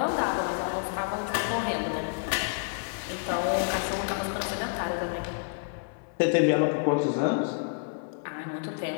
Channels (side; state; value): right; silent; 59 dB below the other